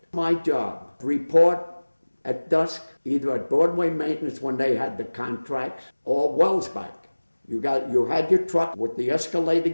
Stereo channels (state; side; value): inverted; both; correlation -1.00